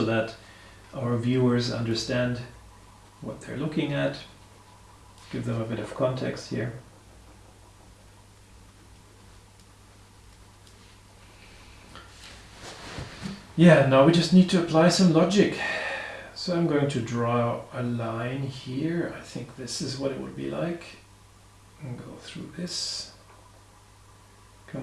that our viewers understand what they're looking at. Give them a bit of context here. Yeah, now we just need to apply some logic. So I'm going to draw a line here. I think this is what it would be like. And go through this,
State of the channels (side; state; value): both; identical; correlation 1.00